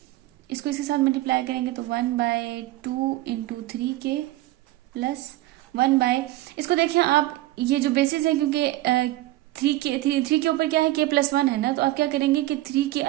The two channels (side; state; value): left; quieter; 17.0 dB